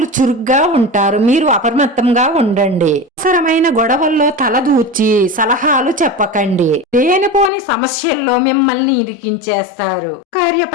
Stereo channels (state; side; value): drops out; right; at 7.5 s